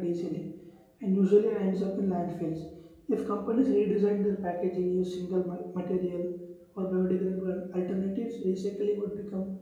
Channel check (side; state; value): both; identical; correlation 1.00